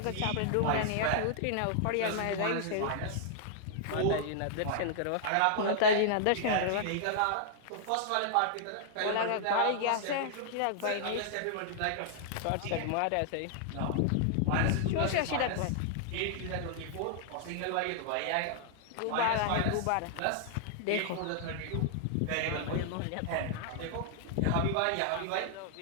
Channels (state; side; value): different; both; correlation -0.01